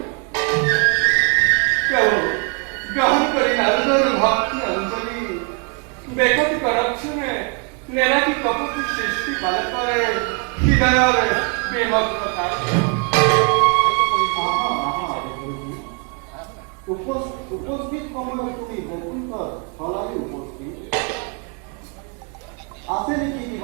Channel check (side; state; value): left; quieter; 36.6 dB